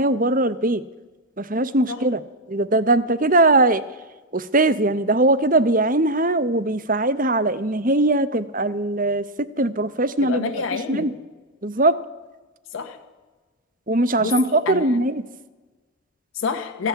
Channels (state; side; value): normal; both; correlation 0.03